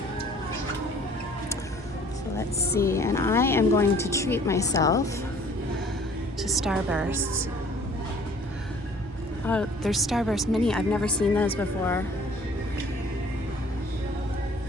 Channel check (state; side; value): normal; both; correlation 0.54